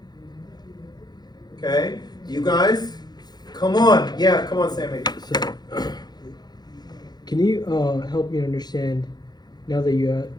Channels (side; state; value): right; late; 0.20 ms